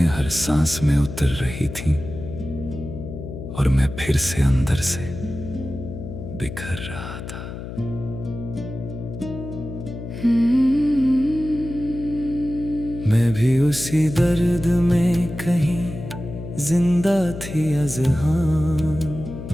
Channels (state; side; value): noise; left; hum, 9 dB below the sound